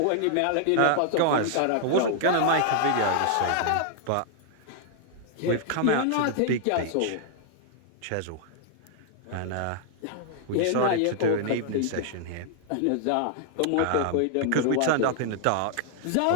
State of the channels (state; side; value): different; both; correlation -0.01